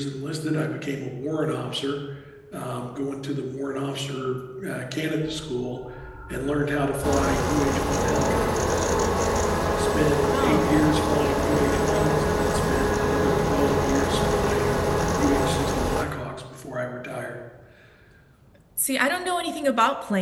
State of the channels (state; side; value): identical; both; correlation 1.00